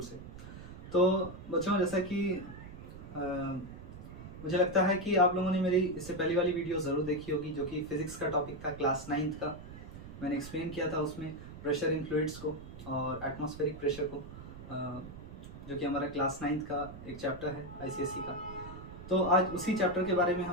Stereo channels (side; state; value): right; noise; rumble, 13 dB below the sound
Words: से। तो बच्चों, जैसा कि मुझे लगता है कि आप लोगों ने मेरी इससे पहली वाली वीडियो ज़रूर देखी होगी, जो कि फिज़िक्स का टॉपिक था, क्लास 9th का। मैंने एक्सप्लेन किया था उसमें प्रेशर इन फ्लूइड्स को और एटमॉस्फेरिक प्रेशर को, जो कि हमारा क्लास 9th का एक चैप्टर है आईसीएसई का। तो आज उसी चैप्टर के बारे में